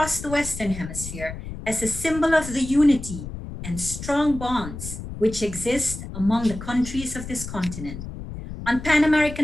the Western Hemisphere as a symbol of the unity and strong bonds which exist among the countries of this continent. On Pan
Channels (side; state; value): left; noise; rumble, 10 dB below the sound